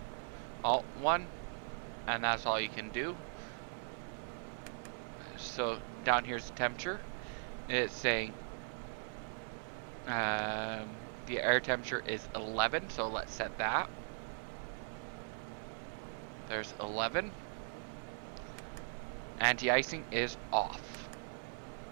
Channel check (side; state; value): left; silent; 51 dB below the other